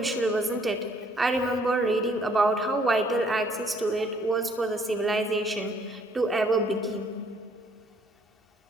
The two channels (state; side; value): normal; both; correlation 0.63